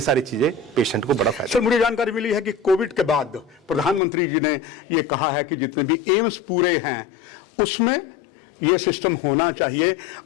सारी चीजें पेशेंट को बड़ा फायदा। सर, मुझे जानकारी मिली है कि कोविड के बाद प्रधानमंत्री जी ने ये कहा है कि जितने भी एम्स पूरे हैं उसमें ये सिस्टम होना चाहिए।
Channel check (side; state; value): right; drops out; at 4.0 s